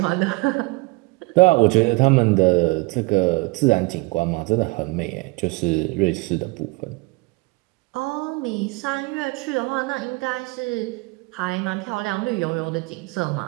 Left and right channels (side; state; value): left; quieter; 25.4 dB